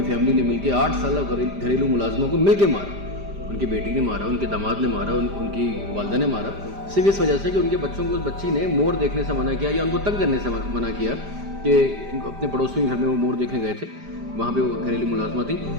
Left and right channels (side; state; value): left; late; 5.0 ms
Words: فیملی نے مل کے 8 سالہ گھریلو ملازموں کو مل کے مارا۔ ان کی بیٹی نے مارا، ان کے داماد نے مارا، ان کی والدہ نے مارا، صرف اس وجہ سے کہ ان کے بچوں کو اس بچی نے مور دیکھنے سے منع کیا یا ان کو تنگ کرنے سے منع کیا کہ اپنے پڑوسی گھر میں وہ مور دیکھنے گئے تھے، وہاں پہ وہ گھریلو ملازمہ تھی۔